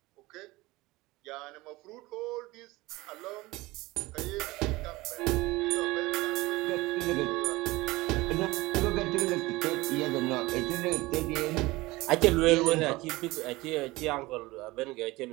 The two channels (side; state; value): left; quieter; 20.5 dB